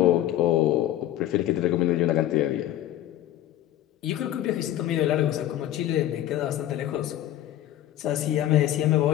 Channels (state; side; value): quieter; right; 13.0 dB